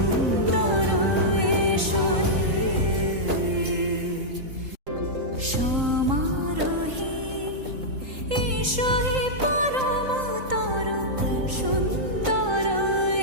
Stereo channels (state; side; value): late; left; 3.8 ms